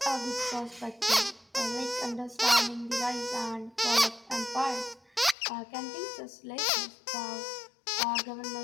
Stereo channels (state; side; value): drops out; right; at 5.4 s